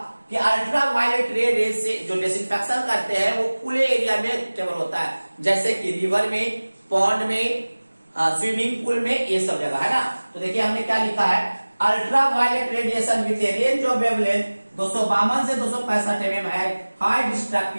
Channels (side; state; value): both; inverted; correlation -1.00